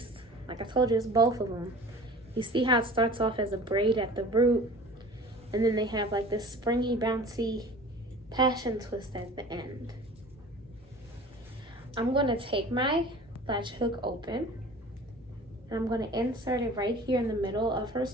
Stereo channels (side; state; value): both; normal; correlation 0.42